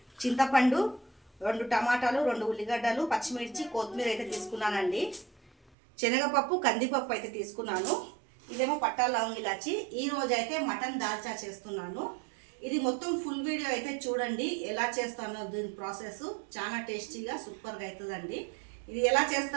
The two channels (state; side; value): drops out; left; at 5.7 s